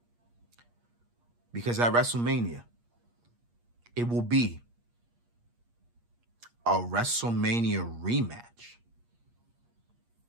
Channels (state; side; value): late; left; 8.5 ms